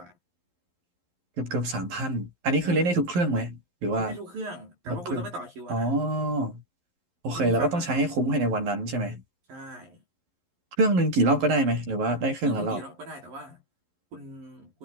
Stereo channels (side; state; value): left; late; 11 ms